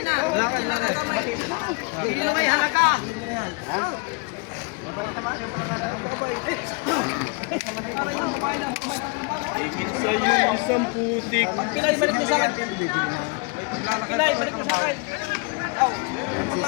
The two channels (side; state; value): right; quieter; 31.9 dB